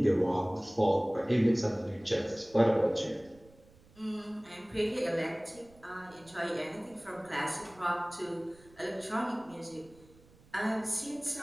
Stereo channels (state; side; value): noise; right; rumble, 26 dB below the sound